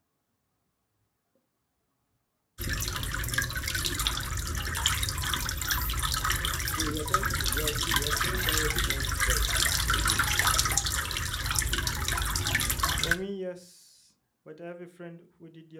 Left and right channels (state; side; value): identical; both; correlation 1.00